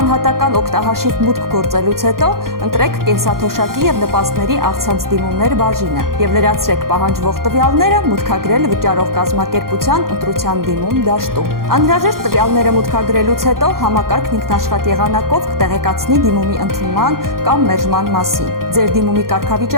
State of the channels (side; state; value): left; late; 0.92 ms